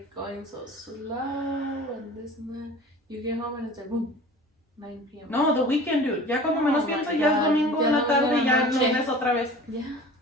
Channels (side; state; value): both; normal; correlation 0.41